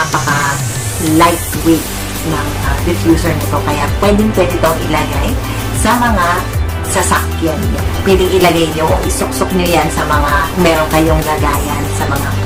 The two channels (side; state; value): both; identical; correlation 1.00